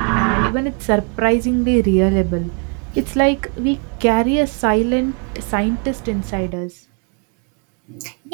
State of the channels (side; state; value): left; quieter; 37.3 dB